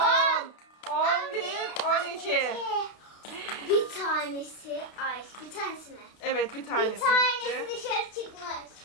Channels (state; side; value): late; right; 32 ms